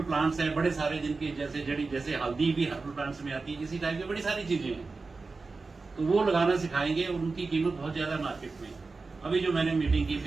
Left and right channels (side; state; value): left; quieter; 4.0 dB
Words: प्लांट्स हैं बड़े सारे, जिनकी जैसे हल्दी भी हर्बल प्लांट्स में आती है, इसी टाइप की बड़ी सारी चीजें हैं, तो वो लगाना सिखाएंगे और उनकी कीमत बहुत ज्यादा मार्केट में। अभी जो मैंने मीटिंग की